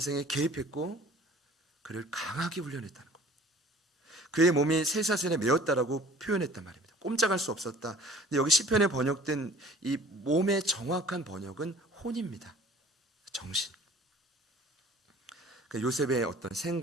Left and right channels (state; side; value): normal; both; correlation 0.49